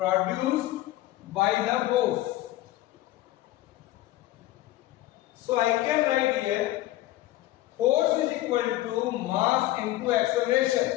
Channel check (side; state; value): right; quieter; 15.9 dB